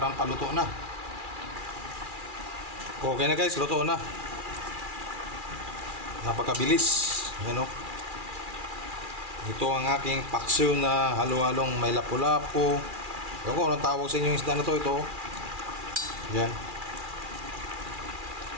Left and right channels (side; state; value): left; late; 2.4 ms